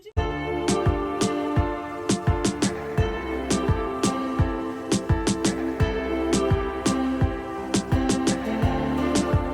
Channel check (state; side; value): identical; both; correlation 1.00